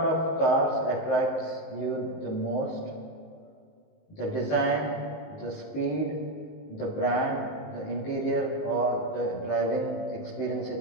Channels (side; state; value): right; late; 19 ms